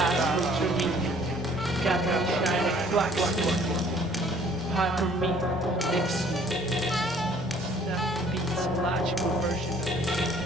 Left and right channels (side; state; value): both; normal; correlation 0.57